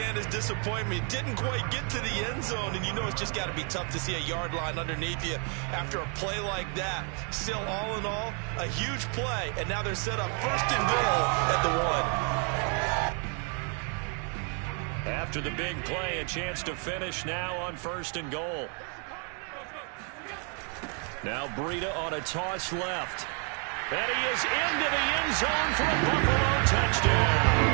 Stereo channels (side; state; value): left; quieter; 39.6 dB